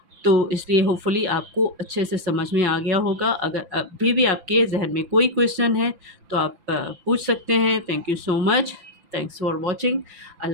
तो इसलिए होपफुली आपको अच्छे से समझ में आ गया होगा। अगर अभी भी आपके ज़हन में कोई क्वेश्चन है तो आप पूछ सकते हैं। Thank you so much. Thanks for watching.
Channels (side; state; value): left; late; 5.9 ms